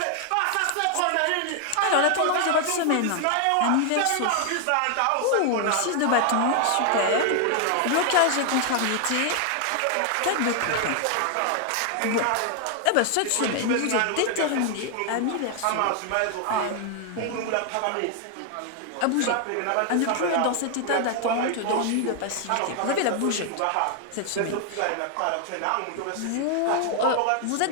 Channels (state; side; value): different; both; correlation 0.00